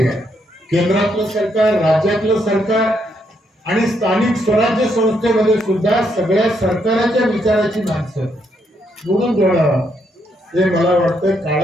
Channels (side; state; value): both; normal; correlation 0.76